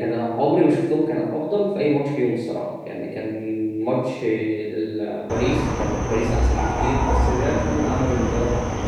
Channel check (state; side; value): identical; both; correlation 1.00